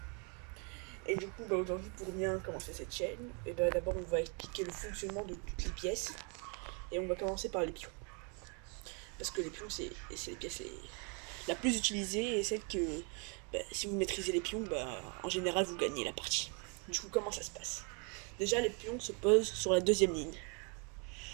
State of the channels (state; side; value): quieter; left; 35.5 dB